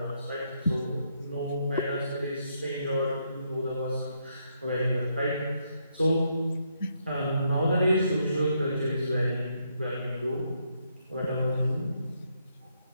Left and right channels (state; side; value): inverted; both; correlation -0.76